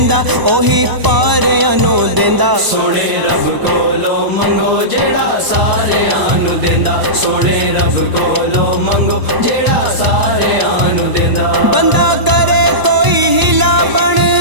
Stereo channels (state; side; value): late; left; 1.0 ms